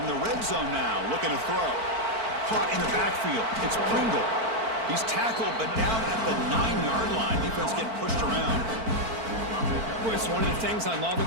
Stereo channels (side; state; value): left; late; 4.5 ms